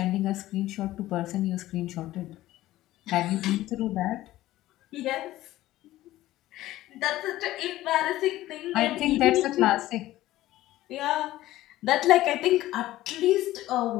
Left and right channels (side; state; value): right; quieter; 15.6 dB